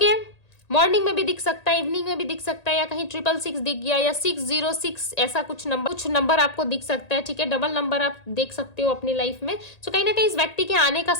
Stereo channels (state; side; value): late; right; 1.8 ms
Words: मॉर्निंग में भी दिख सकता है, इवनिंग में भी दिख सकता है, या कहीं 666 दिख गया, या 606 ऐसा कुछ नंबर आपको दिख सकता है, ठीक है? डबल नंबर आप देख सकते हो अपनी लाइफ में। सो कहीं ना कहीं इस व्यक्ति के आने का